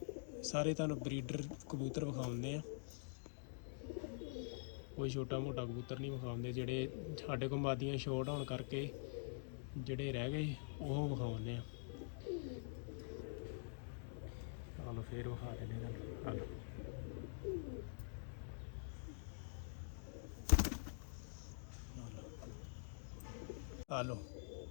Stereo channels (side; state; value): right; silent; digital silence